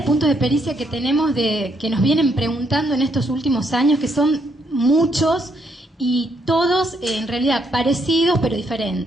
puntos de pericia que tenemos, que nos vienen preguntando en estos últimos años, que son muchos y todos en realidad parecidos pero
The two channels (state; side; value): normal; both; correlation 0.74